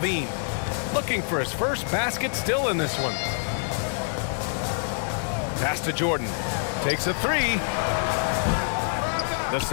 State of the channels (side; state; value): right; silent; digital silence